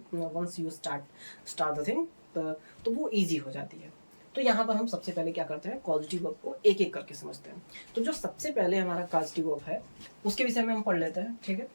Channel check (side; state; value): both; inverted; correlation -1.00